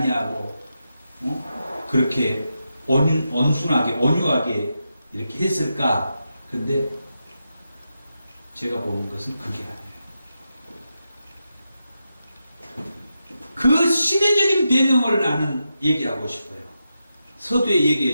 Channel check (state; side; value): inverted; both; correlation -0.87